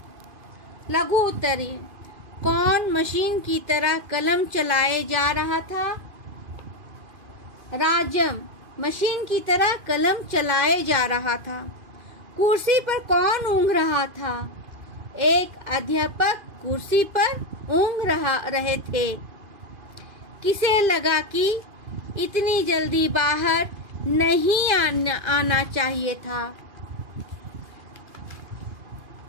लघु उत्तरीय, कौन मशीन की तरह कलम चलाए जा रहा था? राजम मशीन की तरह कलम चलाए जा रहा था। कुर्सी पर कौन ऊँघ रहा था? एक अध्यापक कुर्सी पर ऊँघ रहे थे। किसे लगा कि इतनी जल्दी बाहर नहीं आना चाहिए था?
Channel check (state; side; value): late; left; 2.5 ms